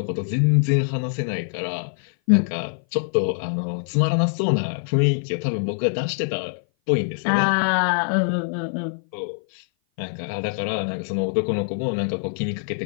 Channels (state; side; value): silent; right; 57 dB below the other